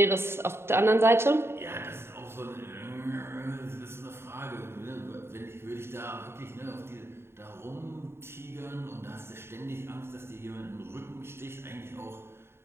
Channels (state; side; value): late; left; 0.12 ms